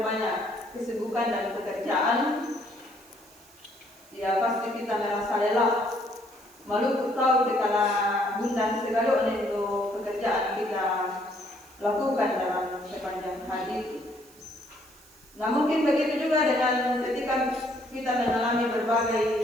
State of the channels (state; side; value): noise; right; hiss, 25 dB below the sound